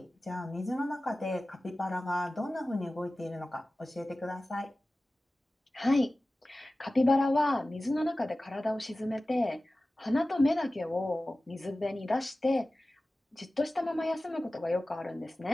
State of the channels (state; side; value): normal; both; correlation 0.96